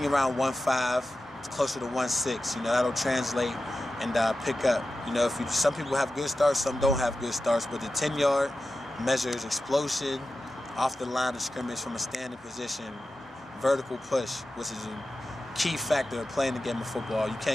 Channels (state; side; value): normal; both; correlation 0.93